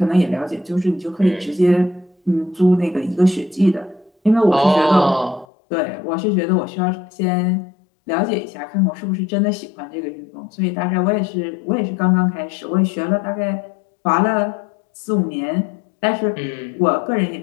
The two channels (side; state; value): right; drops out; at 5.5 s